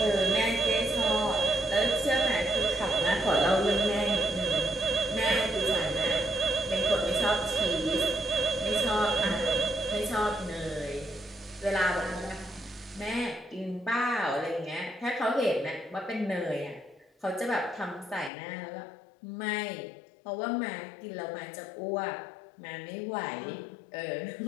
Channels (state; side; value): drops out; right; at 18.3 s